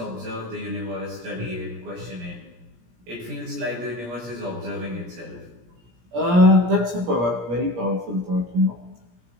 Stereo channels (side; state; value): left; late; 17 ms